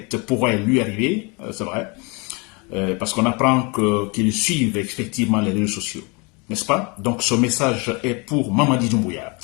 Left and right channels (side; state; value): right; quieter; 29.7 dB